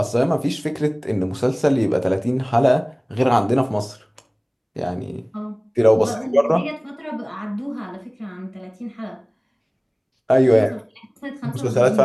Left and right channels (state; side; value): identical; both; correlation 1.00